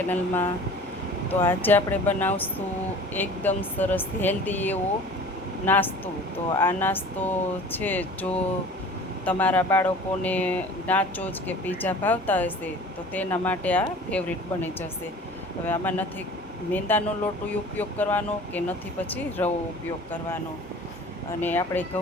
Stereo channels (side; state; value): both; normal; correlation 0.44